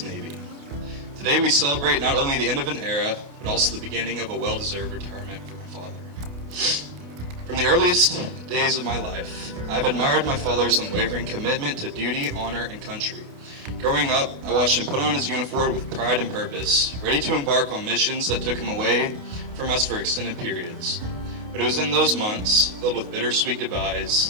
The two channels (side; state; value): left; late; 28 ms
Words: Navy. Today we celebrate not only the end of an era, but also the beginning of a well-deserved retirement for my father. From the earliest days of my life, I've admired my father's unwavering commitment to duty, honor, and country. Growing up, I watched him put on his uniform with pride and purpose, ready to embark on missions that took him away from us for extended periods. But it was in those months, filled with bittersweet